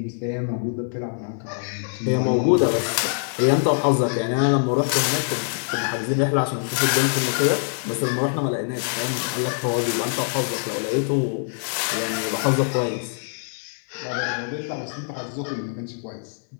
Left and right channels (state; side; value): silent; right; 63 dB below the other